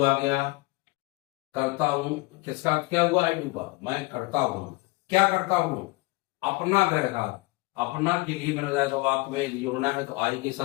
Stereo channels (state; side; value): quieter; right; 23.9 dB